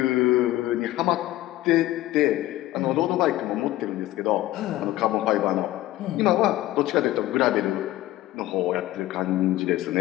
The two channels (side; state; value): right; quieter; 15.9 dB